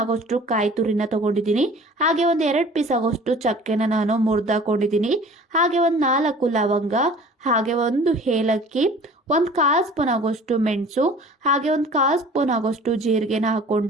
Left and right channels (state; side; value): normal; both; correlation 0.46